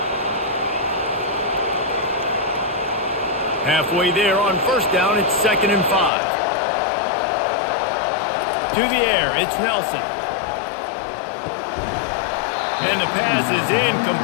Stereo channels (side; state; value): right; drops out; at 6.1 s